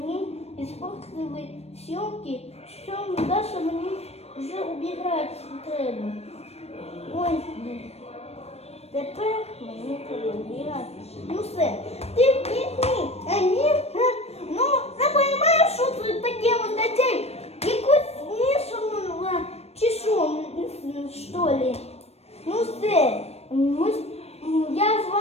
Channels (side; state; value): right; late; 0.30 ms